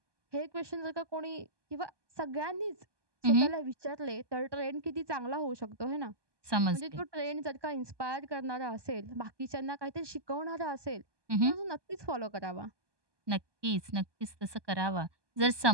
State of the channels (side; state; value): left; late; 1.2 ms